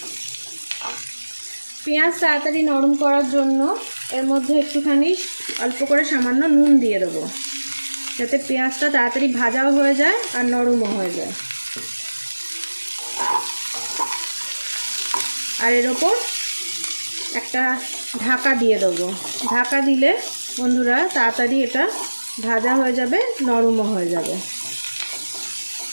পেঁয়াজ তাড়াতাড়ি নরম করার জন্য এর মধ্যে একটুখানি অল্প করে সামান্য নুন দিয়ে দেবো, যাতে পেঁয়াজটা তাড়াতাড়ি ভাজাও হয়ে যায় আর নরমও হয়ে যায়। আর এর ওপর একটা ঢাকা দিয়ে দেবো। ঢাকা দিলে বন্ধুরা তাড়াতাড়ি এটা ভাজা হয়ে যাবে, নরমও হয়ে যাবে।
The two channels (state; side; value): inverted; both; correlation -1.00